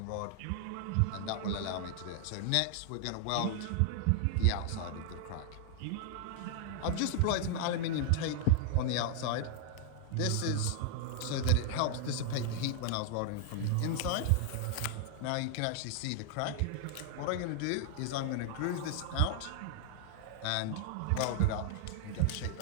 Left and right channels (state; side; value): different; both; correlation 0.00